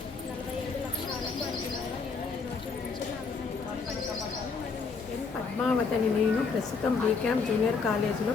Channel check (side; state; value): right; quieter; 4.9 dB